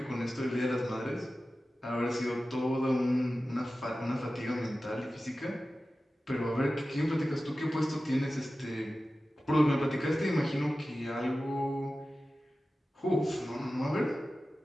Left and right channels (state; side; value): normal; both; correlation 0.95